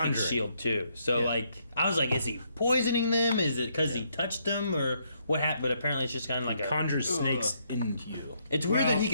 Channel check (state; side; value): inverted; both; correlation -0.73